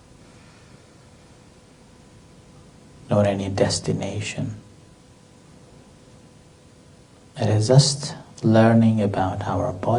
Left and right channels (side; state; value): both; identical; correlation 1.00